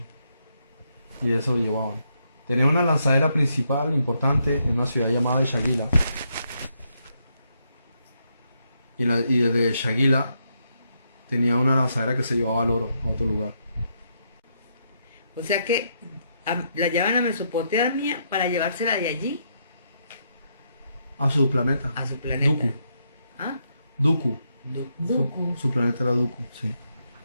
Y eso lo llevaban. Tenía una lanzadera principal importante en una ciudad llamada Shagila. Y desde Shagila tenía una lanzadera que se llevaba el oro a otro lugar. O sea que la llevan a Mesopotamia para llevársela de allí A su planeta. a su planeta. Duku. ¿Ah? Duku. Duku. Su planeta era Duku, sí.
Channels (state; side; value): inverted; both; correlation -0.78